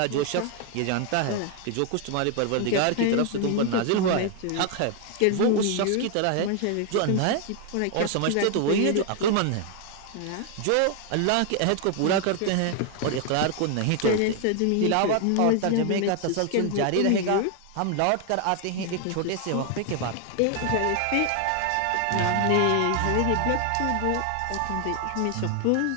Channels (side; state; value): both; different; correlation 0.00